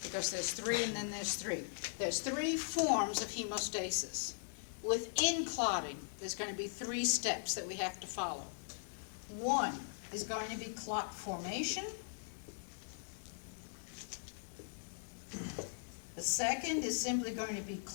because there's 3 and then there's 3. There's 3 forms of hemostasis. Within clotting, there's going to be 3 steps that we have to follow. 1 is going to be clot formation. The second is simply going to be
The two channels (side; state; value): right; silent; digital silence